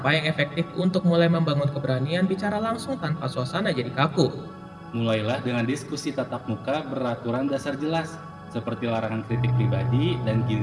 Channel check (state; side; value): identical; both; correlation 1.00